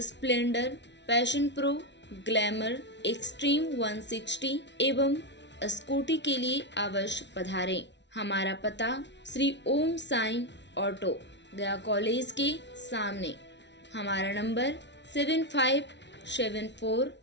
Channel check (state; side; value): late; right; 0.51 ms